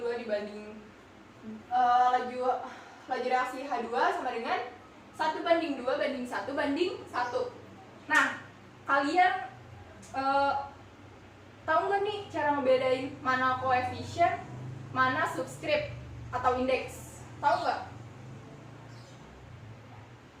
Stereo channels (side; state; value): both; identical; correlation 1.00